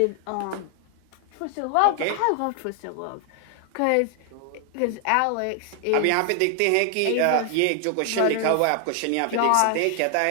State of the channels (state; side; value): different; both; correlation 0.00